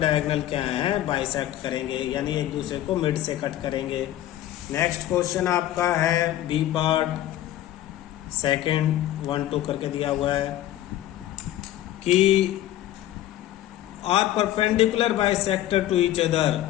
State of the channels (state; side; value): quieter; right; 13.4 dB